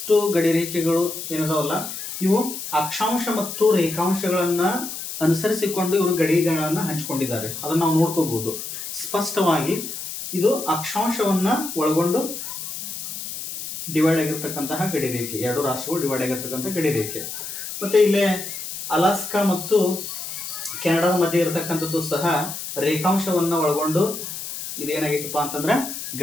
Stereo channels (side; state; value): left; noise; hiss, 8 dB below the sound